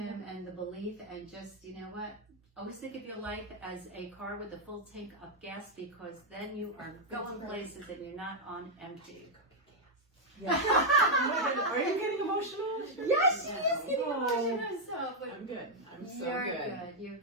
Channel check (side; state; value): both; normal; correlation -0.01